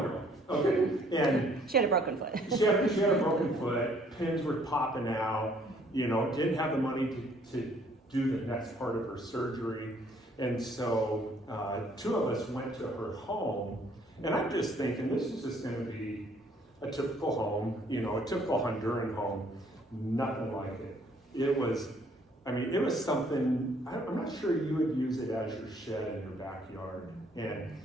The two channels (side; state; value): both; normal; correlation 0.63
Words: girl. Okay. And She had a broken foot. she had a broken foot, pins were popping out, you know, didn't have the money to do the next part of her surgery. And so 2 of us went to her home, and I'm just thinking this is just going to be a typical home, you know, a typical Honduran home, nothing like it. It was something, I'm not sure you would use it as your shed in your backyard. And,